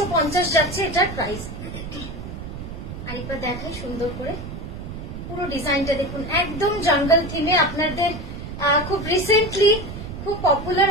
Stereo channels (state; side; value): noise; right; rumble, 9 dB below the sound